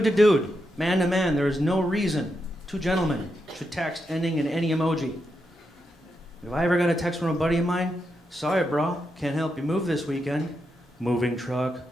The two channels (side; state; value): both; normal; correlation 0.84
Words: to dude, man to man, there is no reason two gentlemen should text ending in any emoji. If I ever got a text from a buddy of mine, sorry bro, can't help you move this weekend. Moving truck,